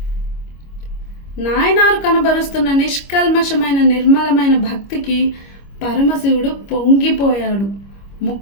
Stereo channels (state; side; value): late; right; 25 ms